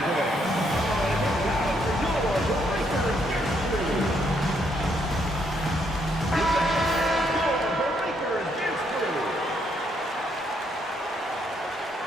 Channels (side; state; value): both; normal; correlation 0.73